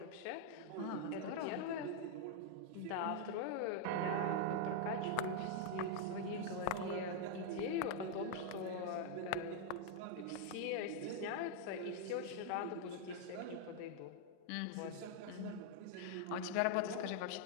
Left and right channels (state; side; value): different; both; correlation 0.00